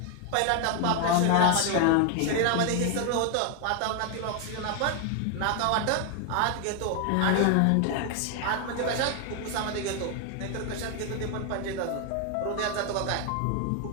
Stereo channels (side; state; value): both; different; correlation 0.00